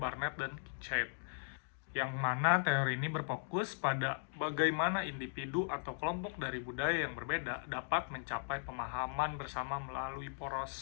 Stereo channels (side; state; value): right; silent; digital silence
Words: dan Chet, yang mana teori ini berfokus pada bagaimana individu atau kelompok dari budaya yang berbeda dapat mencapai pemahaman bersama melalui